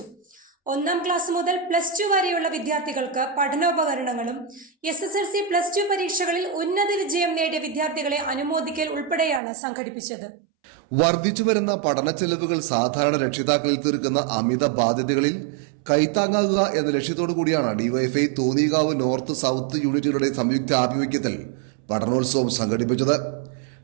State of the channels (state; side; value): drops out; left; at 9.4 s